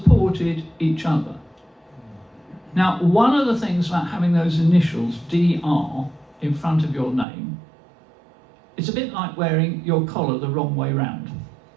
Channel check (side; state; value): left; drops out; at 7.2 s